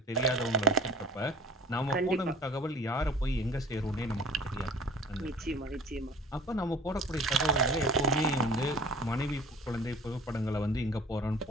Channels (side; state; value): both; normal; correlation 0.45